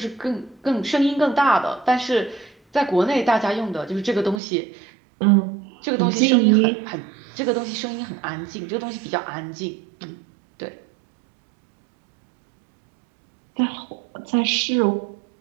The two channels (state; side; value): drops out; left; at 4.4 s